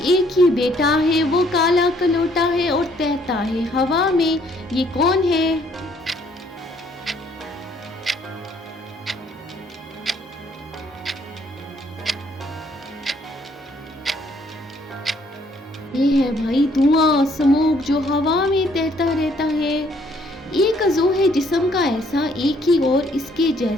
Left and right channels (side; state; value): both; normal; correlation 0.65